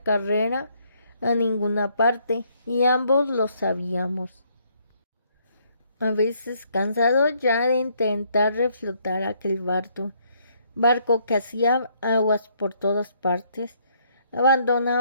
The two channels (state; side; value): inverted; both; correlation -0.69